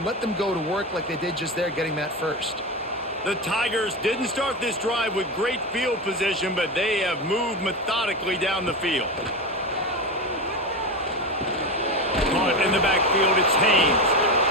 let them go to work like they did just there, getting that first. The Tigers didn't start this drive with great field position, but they have moved methodically down the field. Caught in the backfield, it's Haynes.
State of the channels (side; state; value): both; normal; correlation 0.19